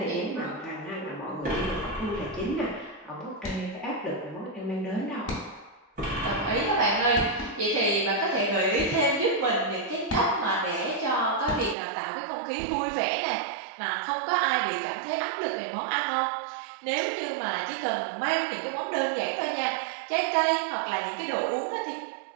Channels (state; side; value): drops out; left; at 11.8 s